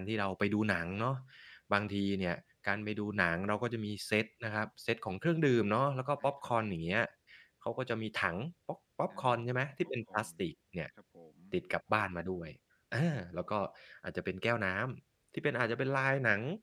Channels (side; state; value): both; identical; correlation 1.00